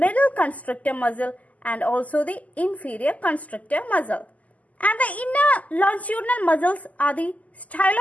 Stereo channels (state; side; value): late; right; 0.074 ms